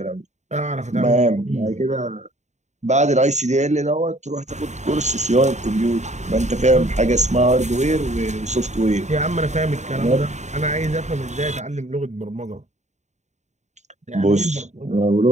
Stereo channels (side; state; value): left; late; 0.34 ms